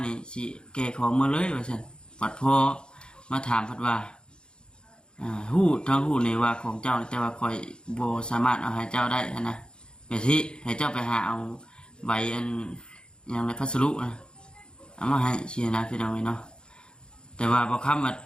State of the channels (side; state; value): right; late; 0.050 ms